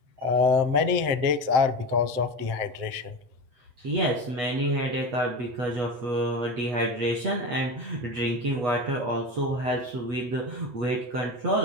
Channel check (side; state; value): left; late; 7.7 ms